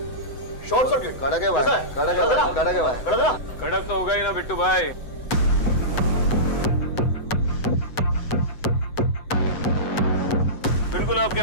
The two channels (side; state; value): right; late; 7.9 ms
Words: Short circuit. कड़क है भाई, कड़क है भाई, कड़क है भाई, कड़क है ना? कड़क तो होगा ही ना बिट्टू भाई। बिल्कुल आपके